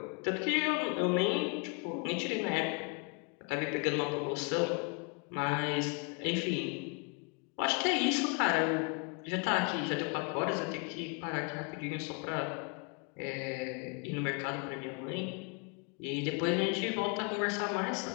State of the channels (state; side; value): quieter; right; 35.1 dB